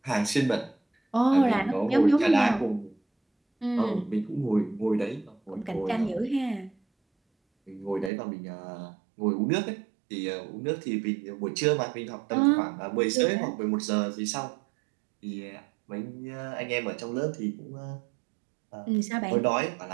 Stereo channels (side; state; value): left; drops out; at 8.1 s